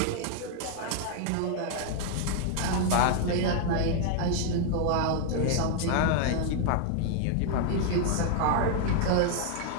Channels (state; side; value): different; both; correlation 0.00